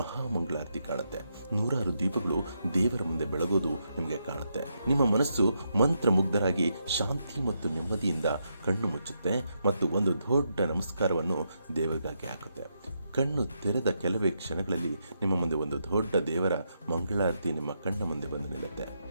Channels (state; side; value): inverted; both; correlation -0.81